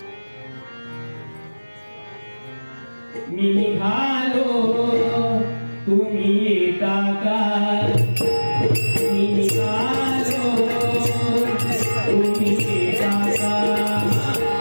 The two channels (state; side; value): inverted; both; correlation -1.00